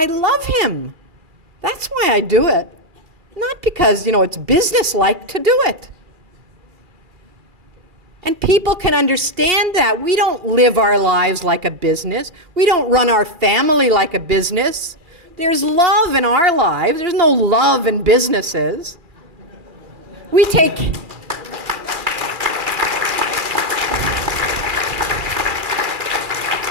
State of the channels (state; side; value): late; left; 2.4 ms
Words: love him. That's why I do it. Not because, you know, it's business-like to do it. And people can understand that. We don't live our lives like a business. We don't run our family like a business. There's love in our lives. There's no love in businesses. We take